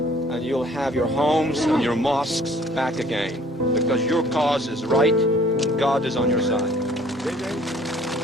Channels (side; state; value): both; normal; correlation 0.56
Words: and you'll have your homes and your mosques back again, because your cause is right, and God is on your side.